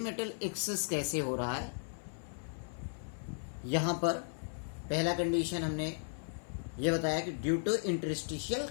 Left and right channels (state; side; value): silent; right; 54 dB below the other